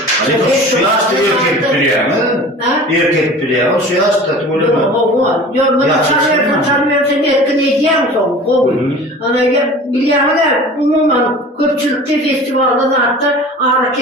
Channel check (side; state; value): both; normal; correlation 0.40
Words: Halipa şu yaşta erkek biliyor mu? Erkek biliyor. Şu yaşta tuğur mu? Yok, bunu tanımıyorsan erken edeceğim son. Ana biliyorum da umuman köpçülükte festivalda da hatta ağrı